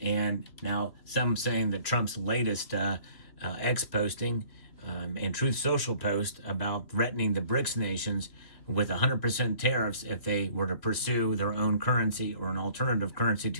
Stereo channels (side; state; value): right; late; 3.0 ms